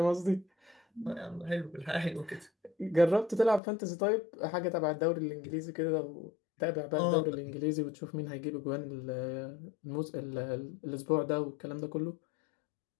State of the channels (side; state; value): right; drops out; at 3.6 s